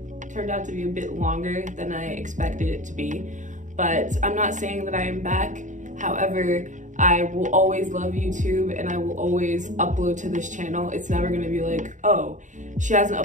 Turned out to be a bit longer than I expected it to be, but I'm not saying that I am back. However, I will always love YouTube and I will always upload to this channel. It's never gonna be like, oh, she hasn't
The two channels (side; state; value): left; late; 0.36 ms